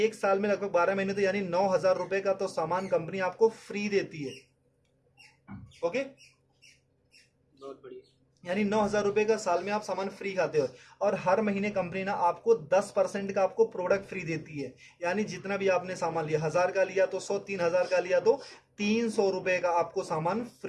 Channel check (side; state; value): both; identical; correlation 1.00